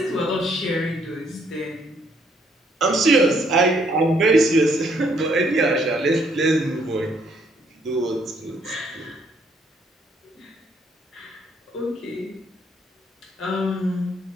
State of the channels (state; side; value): normal; both; correlation 0.68